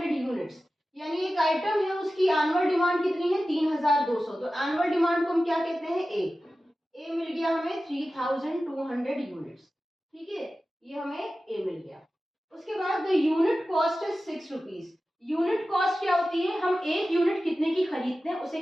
units, यानी एक आइटम है उसकी एनुअल डिमांड कितनी है 3200, तो एनुअल डिमांड को हम क्या कहते हैं ए मिल गया हमें 3200 यूनिट्स, ठीक है, ये हमें ए मिल गया। उसके बाद the unit cost is 6 rupees, unit cost क्या होती है, हम एक यूनिट कितने की खरीदते हैं उसे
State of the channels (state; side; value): normal; both; correlation 0.95